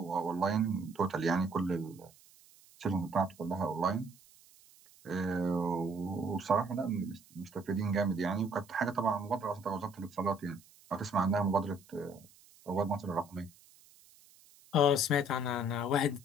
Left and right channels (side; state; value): right; noise; hiss, 26 dB below the sound